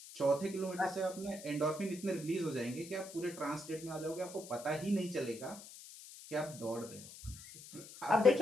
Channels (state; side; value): noise; left; hiss, 15 dB below the sound